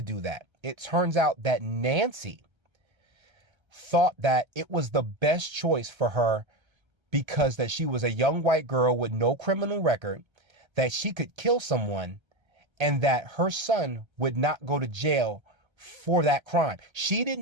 do that. It turns out that Nancy thought that it was the best choice for her because that she was a young white girl with no criminal record, that she could kill someone, and that her son would not go to jail for that crime. She did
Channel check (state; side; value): late; left; 1.3 ms